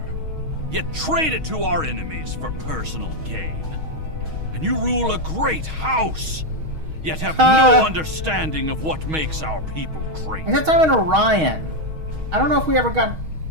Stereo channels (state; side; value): late; left; 6.3 ms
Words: yet trade it to our enemies for personal gain. And you rule a great house, yet have no understanding of what makes our people great. Except I'm in Orion. I don't know if we ever got...